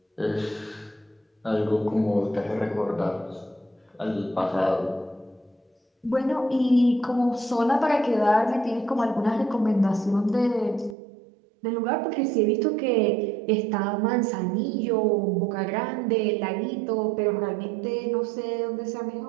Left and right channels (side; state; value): left; drops out; at 11.0 s